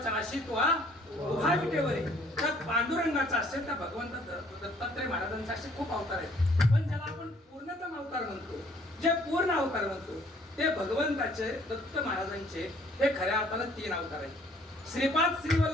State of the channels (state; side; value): normal; both; correlation 0.60